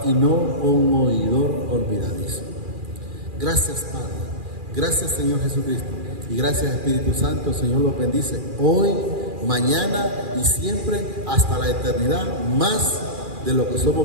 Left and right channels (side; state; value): left; late; 2.4 ms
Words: y no un oidor olvidadizo. Gracias, Padre. Gracias, Señor Jesucristo. Y gracias, Espíritu Santo. El Señor los bendice hoy, mañana y siempre hasta la eternidad, más de lo que